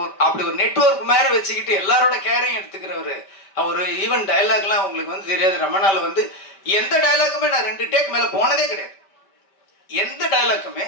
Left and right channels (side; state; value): right; late; 5.1 ms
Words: அப்படி ஒரு நெட்வொர்க் மாதிரி வச்சுக்கிட்டு எல்லாரோட கேரையும் எடுத்துக்கிறவர். ஒரு ஈவன் டைலாக்லாம் உங்களுக்கு வந்து தெரியாது. ரமணாவில் வந்து எந்த டைலாக்குமே நான் 2 டேக் மேலே போனதே கிடையாது. எந்த டைலாக்குமே